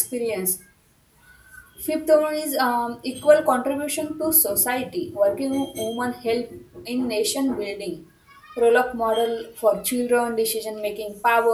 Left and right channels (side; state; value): both; identical; correlation 1.00